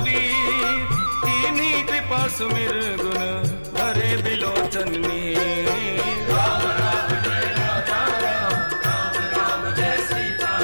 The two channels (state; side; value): inverted; both; correlation -1.00